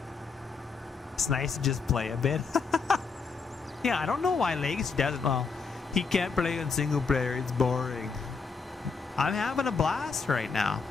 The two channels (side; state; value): right; quieter; 4.9 dB